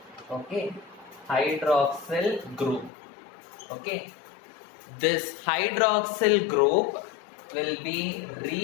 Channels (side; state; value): right; drops out; at 2.9 s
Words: Okay, hydroxyl group. Okay, this hydroxyl group will be